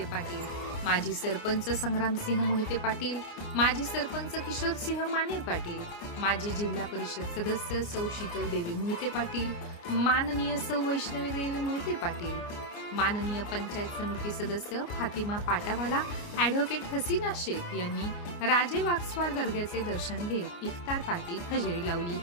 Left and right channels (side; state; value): right; late; 29 ms